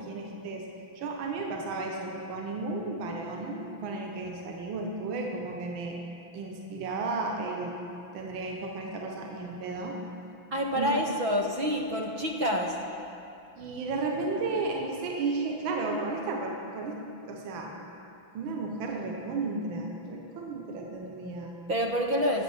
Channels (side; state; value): left; late; 6.0 ms